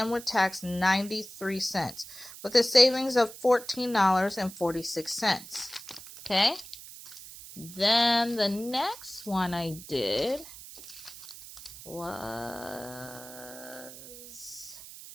with tax 93 cents with a savings of $14.46. Okay. Then the next one I did was,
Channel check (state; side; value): noise; right; hiss, 15 dB below the sound